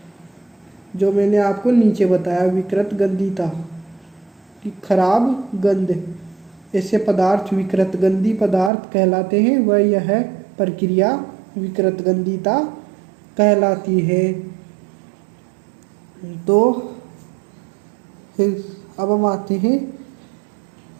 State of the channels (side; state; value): left; drops out; at 8.7 s